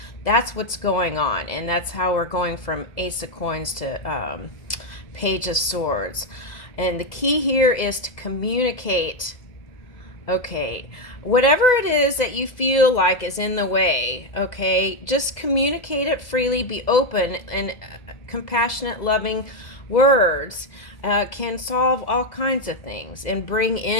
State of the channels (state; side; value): late; right; 2.0 ms